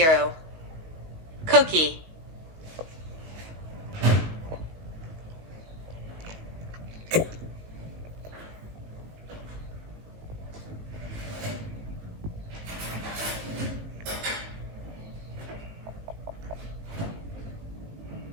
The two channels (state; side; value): late; left; 19 ms